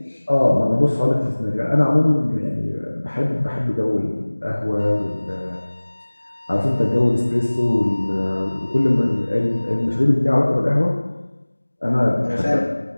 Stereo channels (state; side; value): inverted; both; correlation -1.00